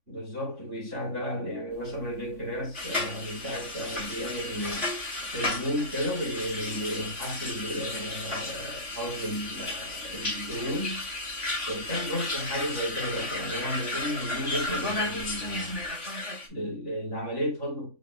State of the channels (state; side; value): late; left; 3.5 ms